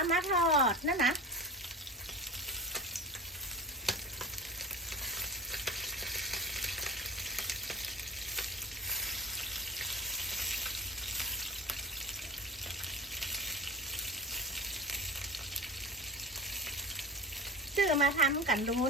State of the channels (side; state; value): both; normal; correlation 0.34